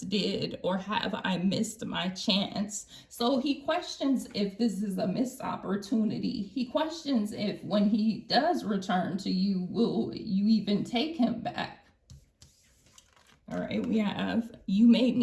did, or have I missed my chance? So he questions if this is a missed opportunity. He questions if when he does return to you, will you even take him back? All right, we have, you made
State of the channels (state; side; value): identical; both; correlation 1.00